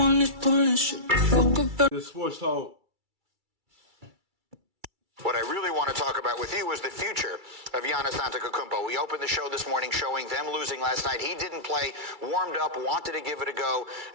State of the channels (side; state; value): left; late; 2.3 ms